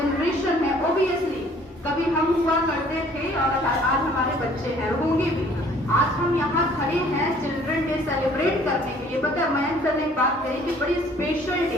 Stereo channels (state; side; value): normal; both; correlation 0.56